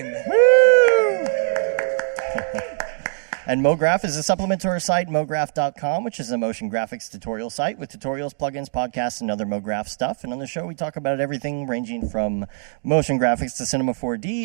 Woo! And Mograph is a supplement to our site, mograph.com, which is a motion graphics tutorial site with tutorials, plugins, podcasts, and other Mograph stuff. And on the show, we talk about everything ranging from motion graphics to Cinema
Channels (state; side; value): silent; left; digital silence